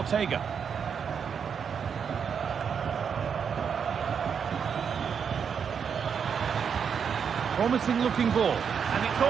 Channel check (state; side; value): quieter; left; 7.0 dB